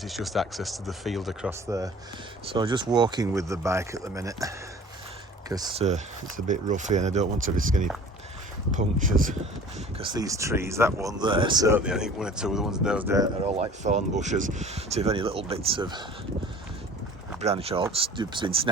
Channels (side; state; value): both; normal; correlation 0.45